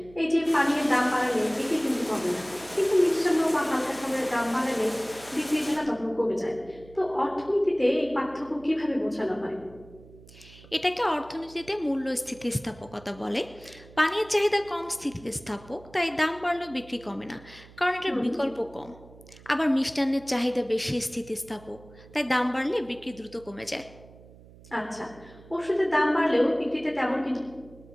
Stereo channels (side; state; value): right; noise; hum, 22 dB below the sound